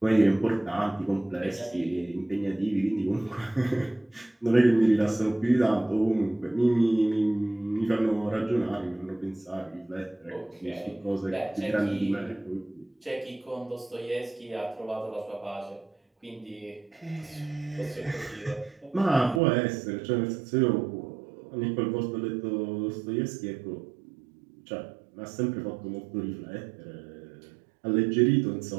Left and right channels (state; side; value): drops out; left; at 19.4 s